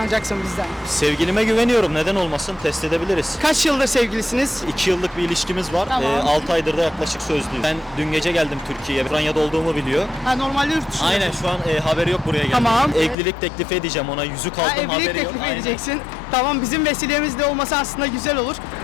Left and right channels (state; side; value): drops out; right; at 13.2 s